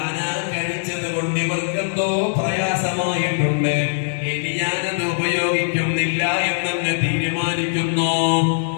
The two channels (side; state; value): right; silent; digital silence